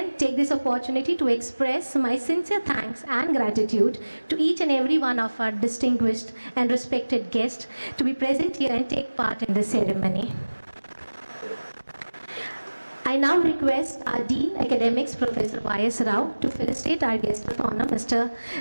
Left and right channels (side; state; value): both; inverted; correlation -1.00